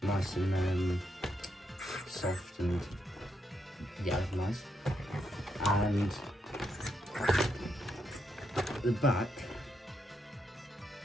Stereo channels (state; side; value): normal; both; correlation 0.79